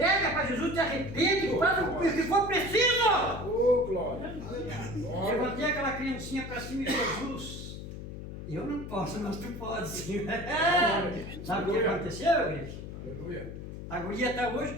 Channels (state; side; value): noise; left; hum, 9 dB below the sound